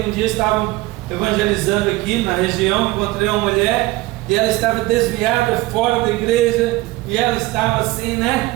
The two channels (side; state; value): left; quieter; 19.3 dB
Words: um dia estavam evangelizando aqui na região, encontrei uma mulher e ela estava desviada fora da igreja e ela estava assim,